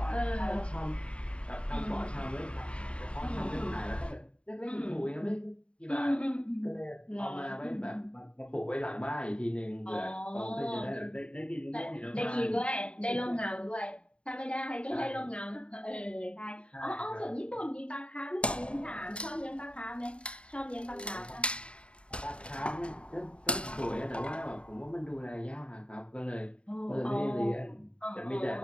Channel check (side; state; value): right; late; 0.057 ms